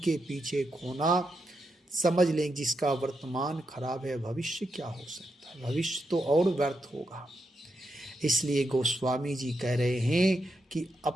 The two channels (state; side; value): normal; both; correlation 0.84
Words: पीछे खोना, समझ लें जिसका वर्तमान खराब है भविष्य क्या हो सकता है, भविष्य तो और व्यर्थ होगा। इसलिए गोस्वामी जी कह रहे हैं कि